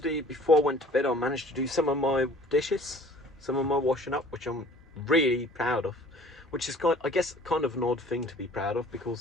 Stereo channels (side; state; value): both; normal; correlation 0.50